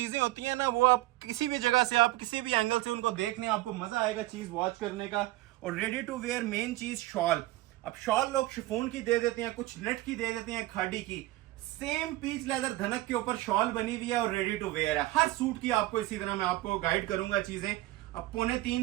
होती हैं ना, वो आप किसी भी जगह से, आप किसी भी एंगल से उनको देखने आपको मजा आएगा चीज वॉच करने का। और रेडी टू वेयर मेन चीज शॉल। अब शॉल लोग शिफॉन की दे देते हैं, कुछ नेट की दे देते हैं, खाड़ी की। सेम पीच लेदर धनक के ऊपर शॉल बनी हुई है और रेडी टू वेयर है। हर सूट की आपको इसी तरह मैं आपको गाइड करूंगा चीजें। अब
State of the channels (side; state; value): left; quieter; 17.7 dB